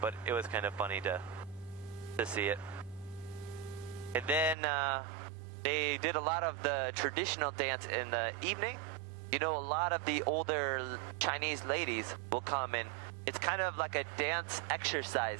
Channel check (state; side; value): drops out; left; at 4.5 s